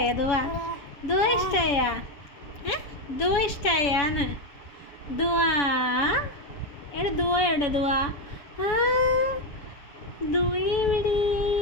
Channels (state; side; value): late; right; 7.0 ms